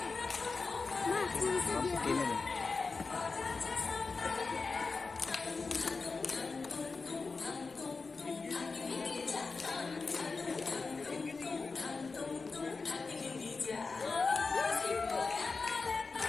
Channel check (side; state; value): right; quieter; 4.2 dB